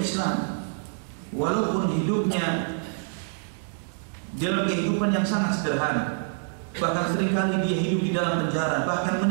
Islam walaupun hidupnya dalam kehidupan yang sangat sederhana, bahkan seringkali dia hidup di dalam penjara, bahkan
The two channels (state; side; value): silent; left; digital silence